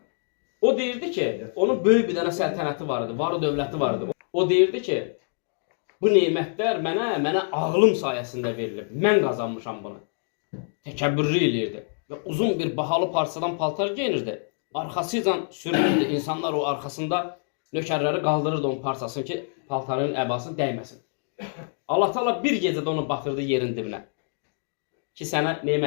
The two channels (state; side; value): silent; right; 61 dB below the other